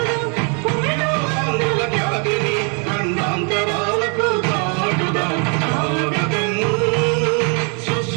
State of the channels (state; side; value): quieter; left; 37.4 dB